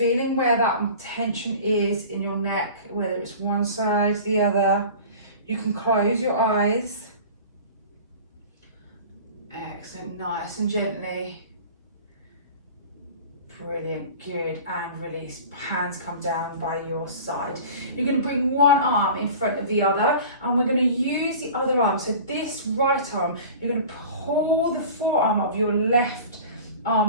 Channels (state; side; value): inverted; both; correlation -0.39